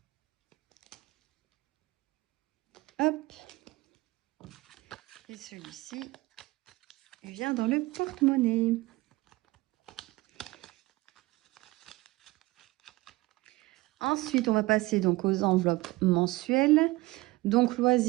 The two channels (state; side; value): quieter; left; 20.6 dB